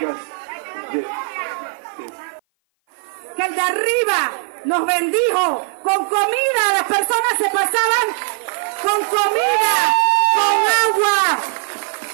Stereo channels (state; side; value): silent; left; 57 dB below the other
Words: Bien. Que el de arriba nos bendijo con comida, las personas se pasaban con comida, con agua.